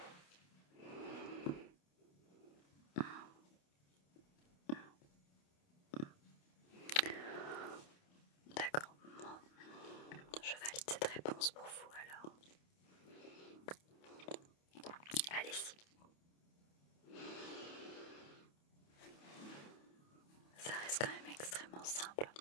D'accord, je valide cette réponse pour vous alors. Allez-y. Ça reste quand même extrêmement simple.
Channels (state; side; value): late; right; 28 ms